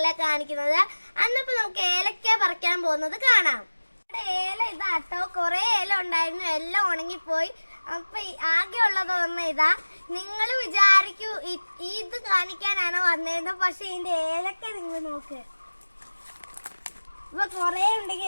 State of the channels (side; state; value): both; inverted; correlation -1.00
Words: കാണിക്കുന്നത്. അന്നിപ്പോ നമുക്ക് ഏലക്ക പറിക്കാൻ പോകുന്നത് കാണാം. ഏല ഇതാട്ടോ, കുറെ ഏല ഉണ്ടായിരുന്നു, എല്ലാം ഉണങ്ങിപ്പോയി. അപ്പൊ ആകെ ഉള്ളത് ഒന്ന് ഇതാ. നിങ്ങൾ വിചാരിക്കൂ ഇത് കാണിക്കാനാണ് വന്നേന്ന്, പക്ഷെ ഇതിന്റെ ഏലക്ക നിങ്ങൾ നോക്ക്. ഇപ്പൊ കൊറേ ഉണ്ടെങ്കിൽ